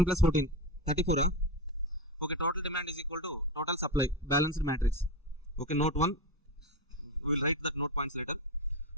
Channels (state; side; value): normal; both; correlation 0.17